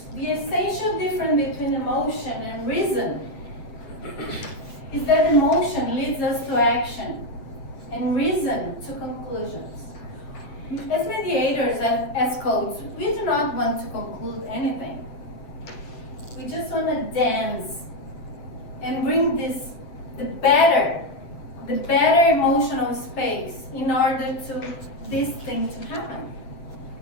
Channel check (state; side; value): late; right; 8.7 ms